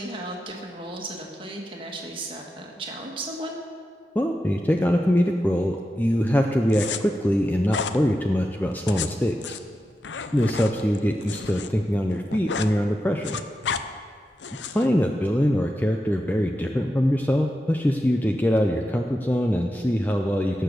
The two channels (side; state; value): both; normal; correlation 0.89